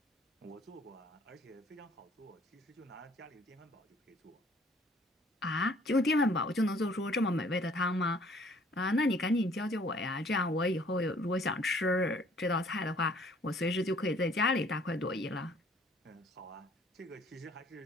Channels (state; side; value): normal; both; correlation 0.58